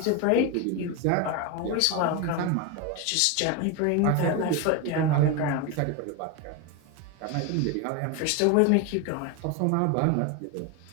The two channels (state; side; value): different; both; correlation 0.02